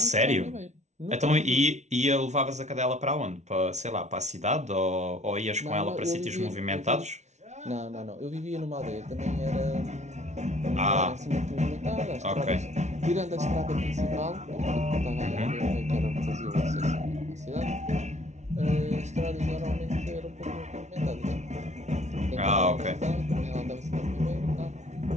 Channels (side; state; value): left; late; 0.33 ms